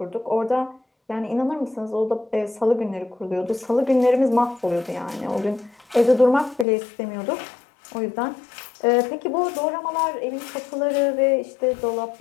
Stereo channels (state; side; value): drops out; right; at 6.7 s